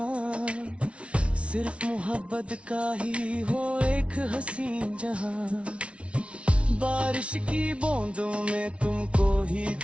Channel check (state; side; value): late; left; 0.061 ms